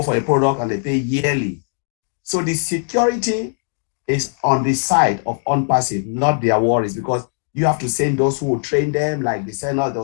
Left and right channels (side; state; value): right; silent; digital silence